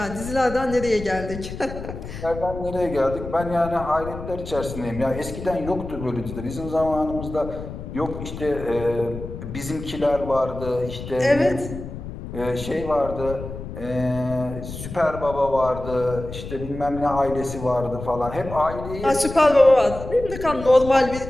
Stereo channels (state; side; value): noise; left; rumble, 10 dB below the sound